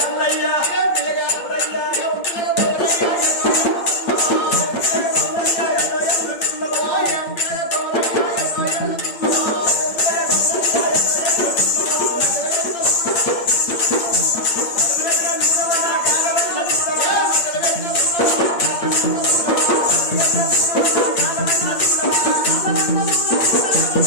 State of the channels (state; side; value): late; right; 8.8 ms